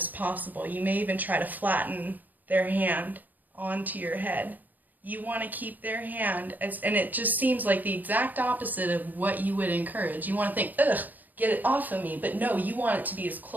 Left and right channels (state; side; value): late; left; 0.084 ms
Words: possible. You may even try to flatten their hand onto your head. You want to keep their hand, and it just seems like the exact opposite of what you would encourage. You want to think, ugh, get it off of me. But no, you want it to be as